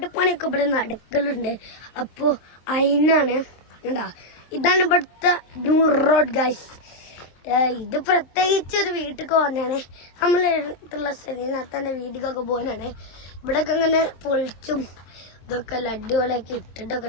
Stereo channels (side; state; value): right; late; 23 ms